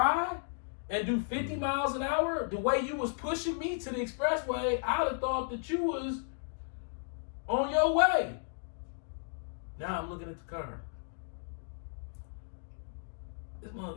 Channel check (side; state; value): right; silent; digital silence